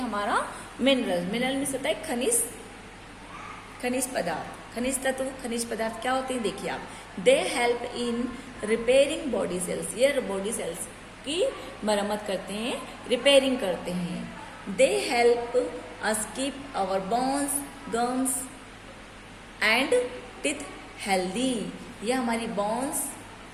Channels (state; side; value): identical; both; correlation 1.00